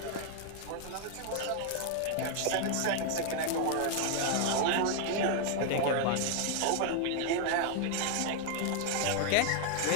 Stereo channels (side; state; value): both; different; correlation 0.00